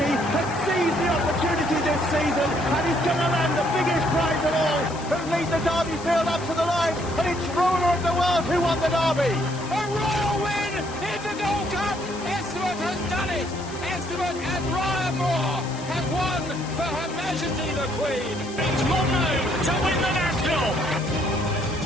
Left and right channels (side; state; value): left; noise; hiss, 16 dB below the sound